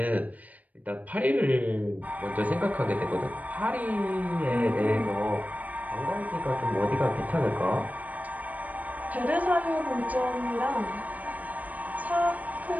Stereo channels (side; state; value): left; late; 0.074 ms